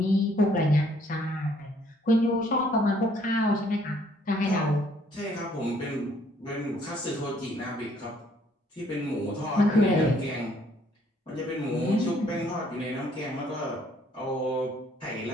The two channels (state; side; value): normal; both; correlation 0.64